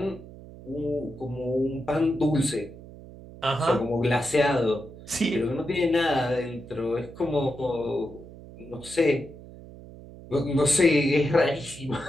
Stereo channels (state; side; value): noise; right; hum, 17 dB below the sound